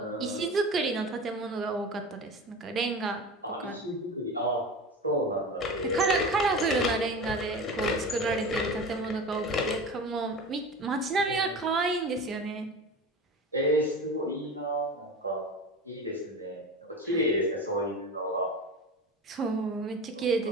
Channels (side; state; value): both; normal; correlation 0.31